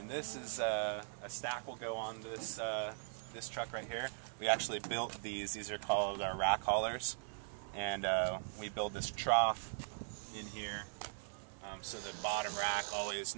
this is a stack will go on this this truck right here. We actually built these. These are called our rack haulers, and we build this trough in here. So the bottom rack always,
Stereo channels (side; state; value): left; silent; 51 dB below the other